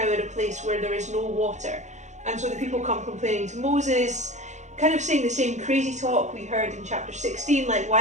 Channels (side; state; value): left; late; 0.34 ms